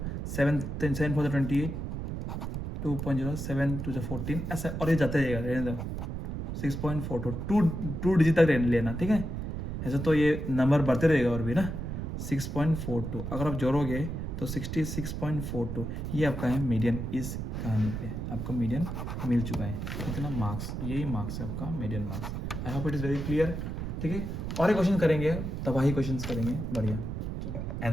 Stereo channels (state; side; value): noise; right; rumble, 5 dB below the sound